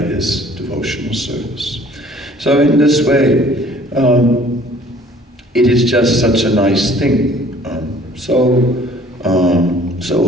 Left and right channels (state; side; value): normal; both; correlation 0.54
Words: devotional service. So in this way, it is just such a nice thing, so